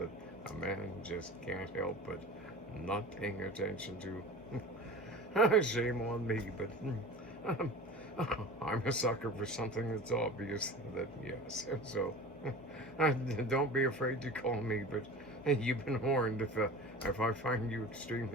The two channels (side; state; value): both; normal; correlation 0.37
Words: a man just can't help but not paying attention to. Shame on me, but um, I'm a sucker for something that's obvious that, yes. So don't be afraid to call me, but you've been warned if I find you